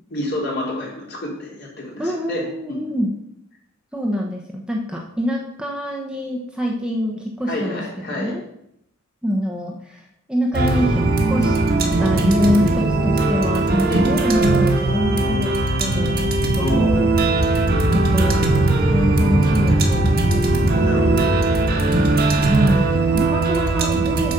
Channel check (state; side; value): normal; both; correlation 0.71